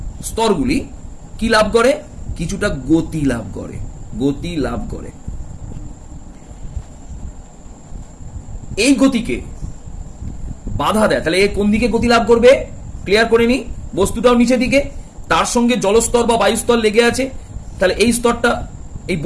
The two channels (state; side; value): identical; both; correlation 1.00